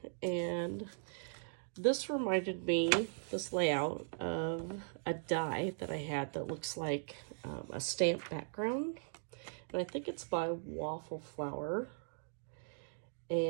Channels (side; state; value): left; silent; digital silence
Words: and this reminded me, this layout, of a die that I had that looks like a stamp background. And I think it's by Waffle Flower.